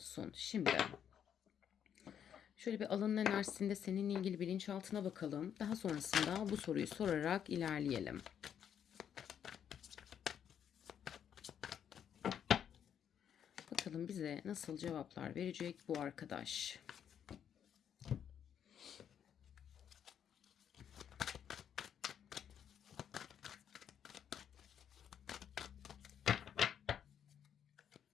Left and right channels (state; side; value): quieter; right; 8.8 dB